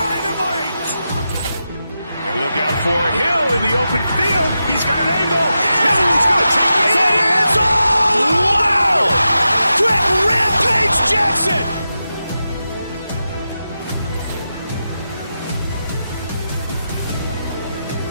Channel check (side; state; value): both; inverted; correlation -0.89